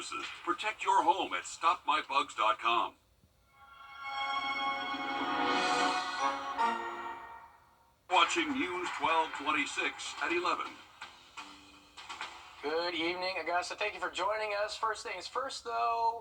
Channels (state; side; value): identical; both; correlation 1.00